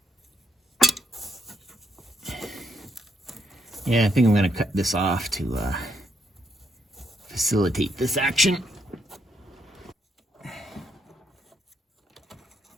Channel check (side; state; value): both; normal; correlation 0.76